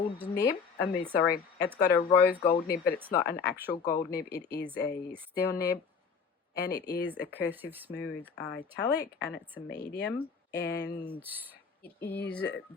nib. It's got a rose gold nib, but it's not an actual gold nib. It is a steel nib, and it is a cursive smooth italic, and it's a medium. And It is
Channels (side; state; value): right; quieter; 5.8 dB